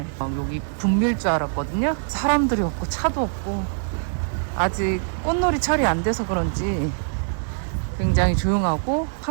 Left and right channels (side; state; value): left; silent; 61 dB below the other